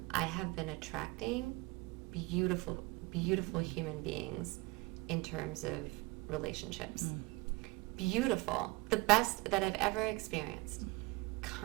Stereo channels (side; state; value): left; quieter; 23.3 dB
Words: I have been attracting beautiful, beautiful human beings in terms of relationships. Beautiful. The best that I've ever experienced.